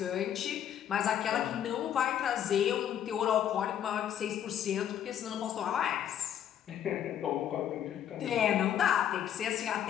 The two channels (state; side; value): quieter; right; 10.0 dB